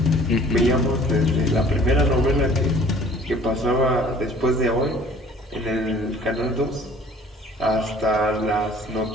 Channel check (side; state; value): both; normal; correlation 0.52